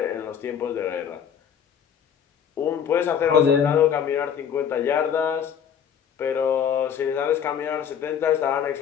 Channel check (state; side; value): quieter; right; 8.2 dB